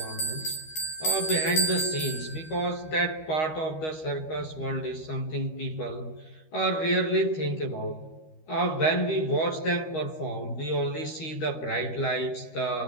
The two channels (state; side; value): late; right; 13 ms